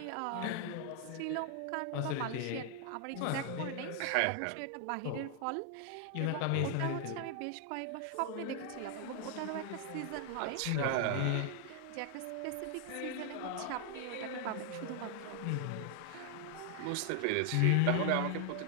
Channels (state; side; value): different; both; correlation 0.00